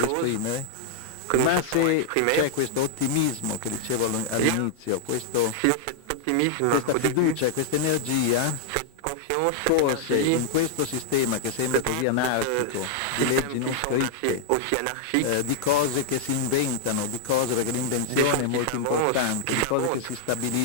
esprimere, ma se c'è questo ottimismo che dicevo all'inizio, questa fiducia, questa energia, forse in questo sistema che sembra così anarchico, di leggi non scritte, di cose che si inventano, di cose, perché l'invenzione è molto importante, di cose che si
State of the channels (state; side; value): normal; both; correlation -0.01